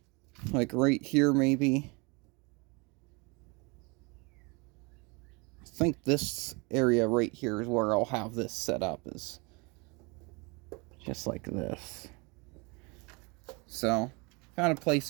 Like right here, maybe. I think this area right here is where I'll have this set up, is just like this. So, found a place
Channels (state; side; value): quieter; left; 28.9 dB